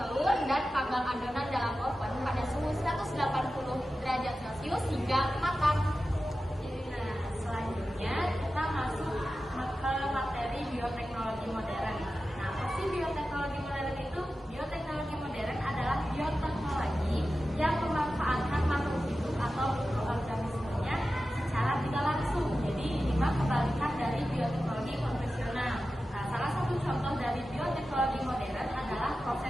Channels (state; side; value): normal; both; correlation 0.93